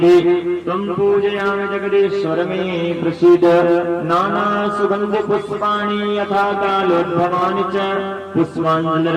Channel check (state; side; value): identical; both; correlation 1.00